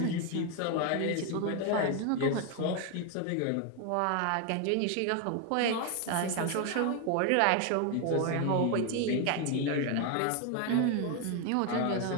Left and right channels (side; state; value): both; different; correlation 0.01